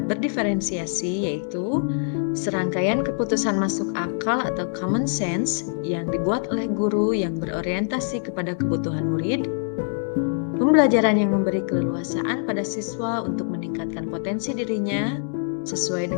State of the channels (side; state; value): right; silent; 62 dB below the other